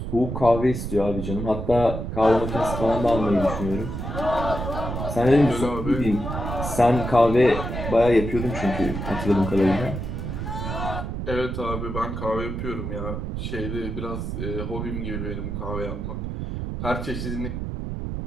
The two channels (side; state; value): right; noise; rumble, 4 dB below the sound